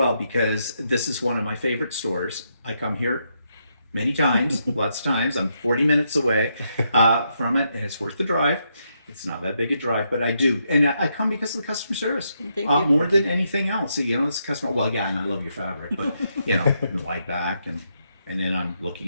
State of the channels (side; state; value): both; inverted; correlation -0.79